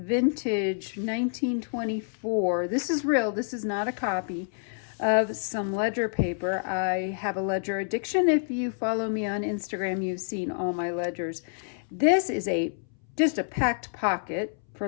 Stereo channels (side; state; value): right; silent; 59 dB below the other